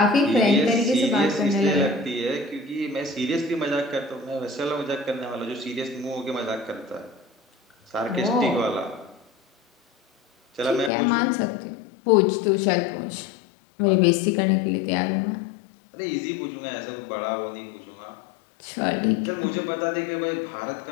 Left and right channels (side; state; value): right; drops out; at 10.9 s